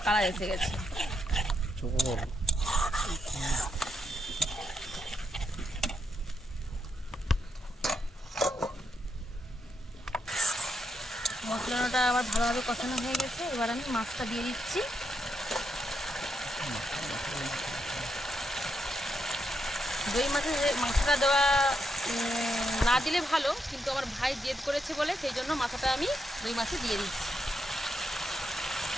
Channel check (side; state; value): both; normal; correlation 0.81